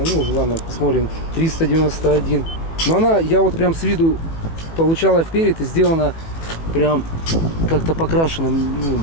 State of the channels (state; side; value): late; right; 18 ms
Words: ну, ладно, посмотрим. 391. Но она, я вот прям с виду получала вперед и сделана прям как-то покрашена. Ну,